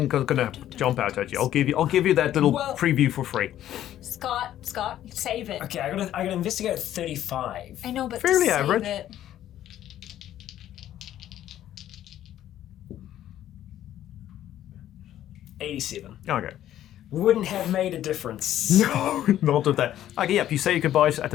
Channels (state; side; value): quieter; right; 12.1 dB